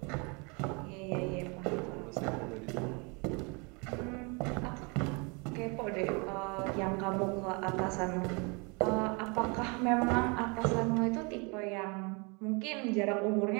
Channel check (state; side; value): quieter; left; 30.9 dB